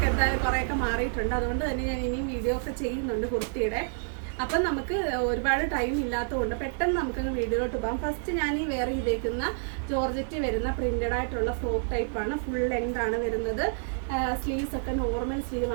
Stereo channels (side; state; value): left; silent; digital silence